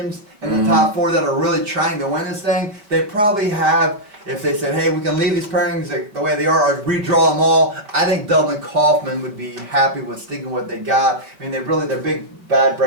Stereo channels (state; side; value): late; left; 5.0 ms